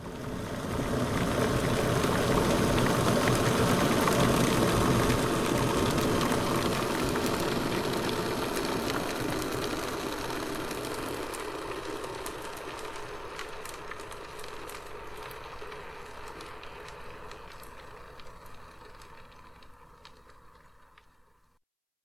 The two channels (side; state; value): both; identical; correlation 1.00